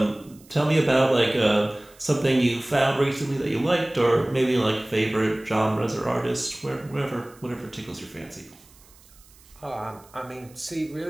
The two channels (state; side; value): noise; right; hiss, 26 dB below the sound